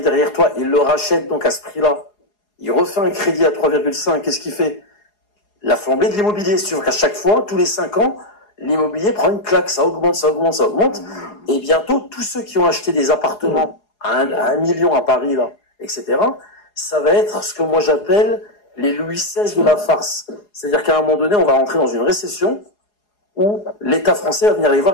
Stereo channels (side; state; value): right; late; 4.8 ms